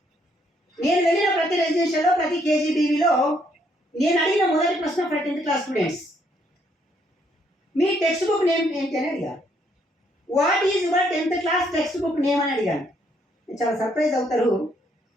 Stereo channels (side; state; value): both; normal; correlation 0.70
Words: నేను వెళ్ళిన ప్రతి రెసిడెన్షియల్లో ప్రతి కేజీబీవీలో నేను అడిగిన మొదటి ప్రశ్న ఫర్ 10th class స్టూడెంట్స్, మీ టెక్స్ట్ బుక్ నేమ్ ఏంటి అని అడిగాను. What is your 10th class text book name అని అడిగాను. చాలా సర్ప్రైజ్ అవుతారు.